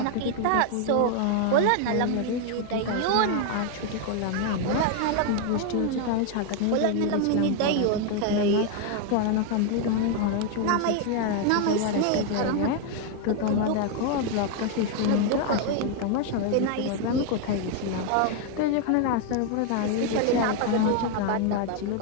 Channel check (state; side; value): different; both; correlation 0.00